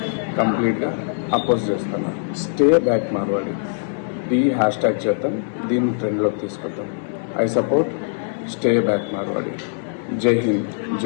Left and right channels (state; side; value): silent; right; 64 dB below the other